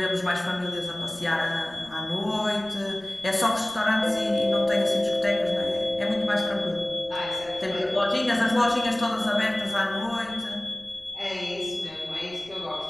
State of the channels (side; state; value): left; noise; rumble, 26 dB below the sound